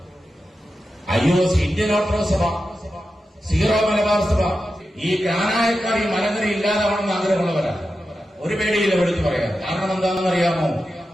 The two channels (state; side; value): normal; both; correlation 0.91